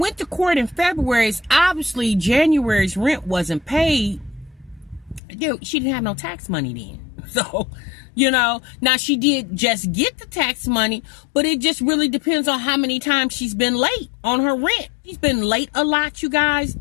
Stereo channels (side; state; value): right; drops out; at 5.2 s